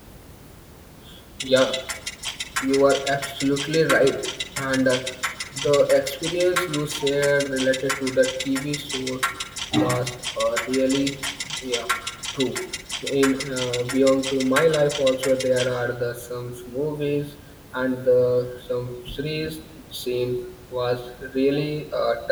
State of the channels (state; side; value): identical; both; correlation 1.00